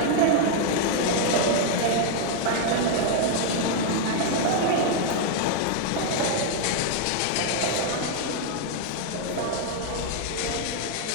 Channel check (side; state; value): both; different; correlation 0.00